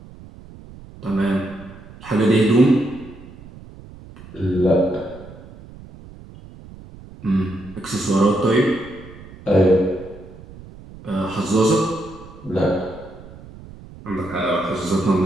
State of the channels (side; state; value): right; noise; rumble, 18 dB below the sound